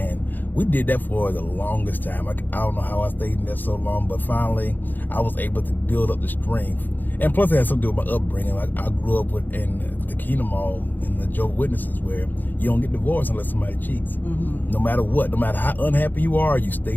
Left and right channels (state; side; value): late; right; 0.088 ms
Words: we did that for the longest time. I don't know how I stayed in there so long, but finally I was able to build up the strength. And plus it had something to do with my upbringing. Like, I grew up in the Kingdom Hall in the Jehovah's Witnesses, where you don't get divorced unless somebody cheats. No matter what, no matter how unhappy you are, you